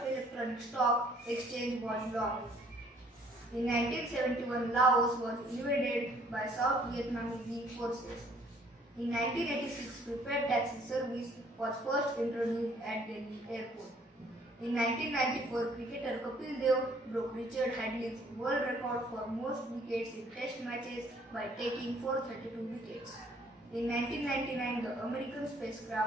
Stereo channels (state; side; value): normal; both; correlation 0.61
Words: electronic stock exchange, was launched. In 1971, Laos was invaded by South Vietnamese forces. In 1986, prepaid taxi service was first introduced at Delhi airport. In 1994, cricketer Kapil Dev broke Richard Hadley's world record for most wickets in test matches by taking 432 wickets. In 1999, the American